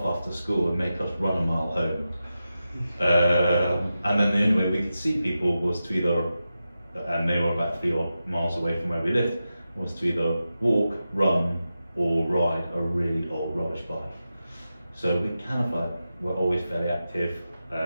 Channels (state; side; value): inverted; both; correlation -0.91